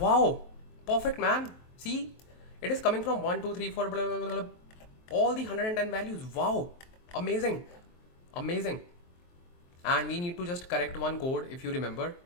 perfect, man. See, it is coming from 1, 2, 3, 4, blah, blah, blah, blah. All the 110 values. Wow, amazing, amazing. And we need to just correct one code. If you remember,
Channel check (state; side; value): late; right; 23 ms